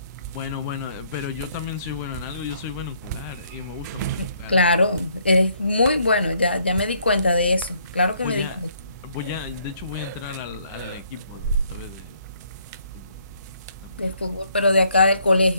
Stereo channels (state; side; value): inverted; both; correlation -0.68